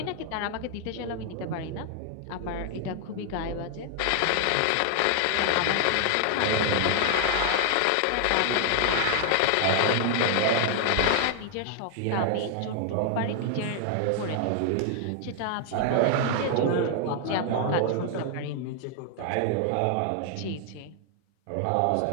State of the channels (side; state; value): both; different; correlation 0.00